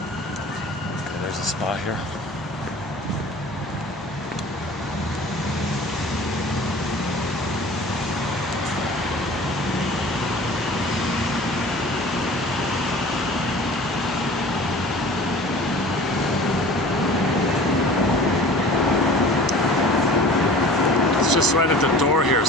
Okay, there's a spot here. Just right at the door here,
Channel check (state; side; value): normal; both; correlation 0.43